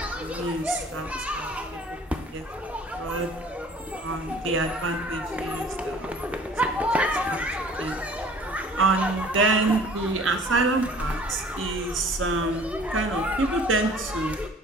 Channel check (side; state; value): both; normal; correlation 0.49